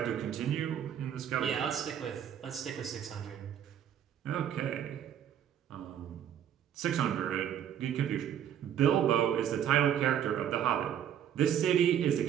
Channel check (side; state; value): left; quieter; 9.6 dB